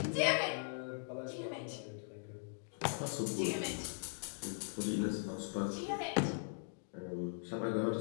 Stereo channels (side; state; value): right; silent; digital silence